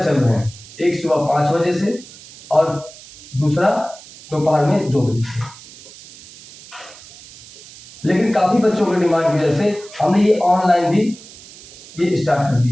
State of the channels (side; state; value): right; noise; hiss, 19 dB below the sound